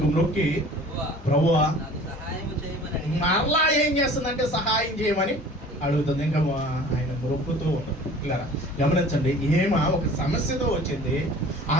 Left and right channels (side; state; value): both; normal; correlation 0.45